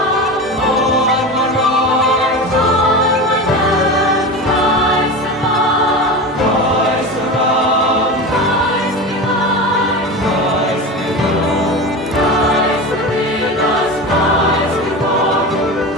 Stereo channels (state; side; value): normal; both; correlation 0.26